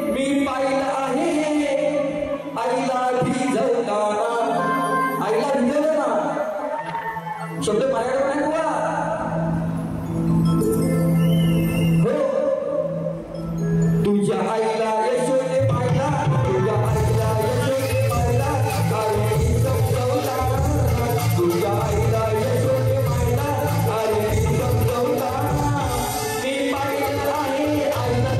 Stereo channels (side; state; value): both; identical; correlation 1.00